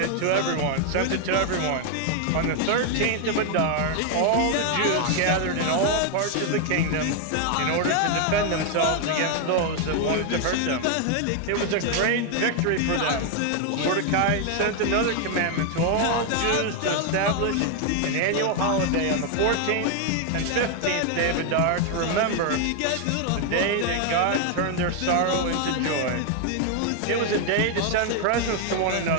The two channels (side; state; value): both; different; correlation 0.00